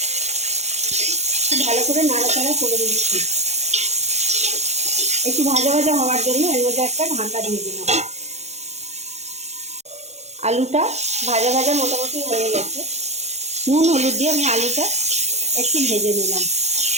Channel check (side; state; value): left; late; 0.32 ms